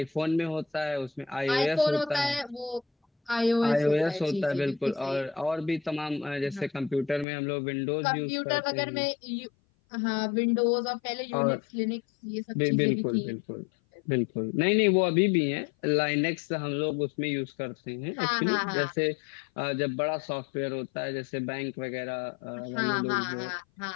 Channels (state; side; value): drops out; right; at 7.2 s